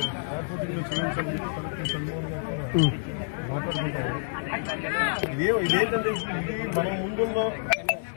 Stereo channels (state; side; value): silent; right; digital silence